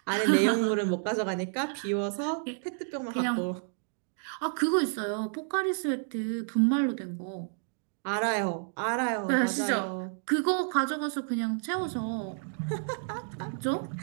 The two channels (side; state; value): left; silent; digital silence